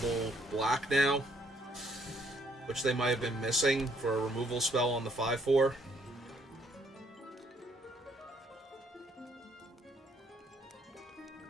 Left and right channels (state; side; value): normal; both; correlation 0.67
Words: black now, which they might have been missing for a removal spell on the 5/4.